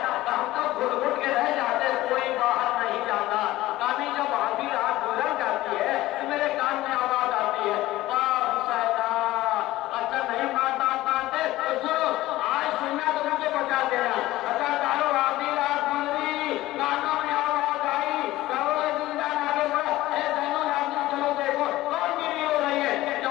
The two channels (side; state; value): right; quieter; 16.8 dB